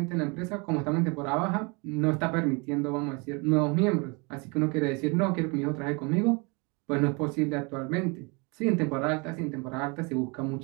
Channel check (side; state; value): left; quieter; 30.3 dB